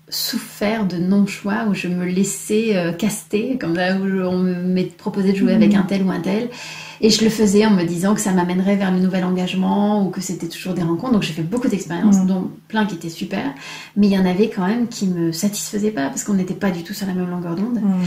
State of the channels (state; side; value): identical; both; correlation 1.00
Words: souffert de non-choix où je me laissais caster, comme là où on me proposait de jouer avec un tel ou un tel. Et je le faisais en me disant que ça m'amènerait vers le nouvel engagement ou que c'était toujours des rencontres. Donc j'ai fait beaucoup d'expériences, dont plein qui étaient super. Mais il y en avait quand même qui ne me satisfaisaient pas parce qu'on n'était pas du tout sur la même longueur d'onde.